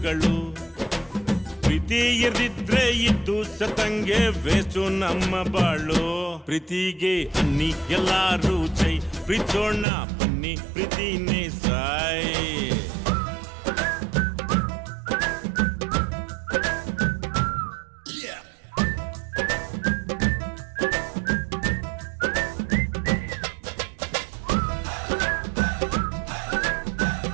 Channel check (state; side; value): drops out; left; at 9.9 s